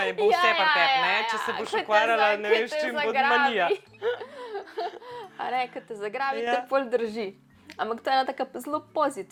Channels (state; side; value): identical; both; correlation 1.00